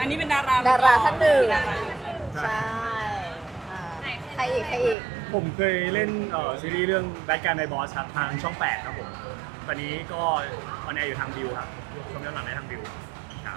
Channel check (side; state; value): left; drops out; at 5.0 s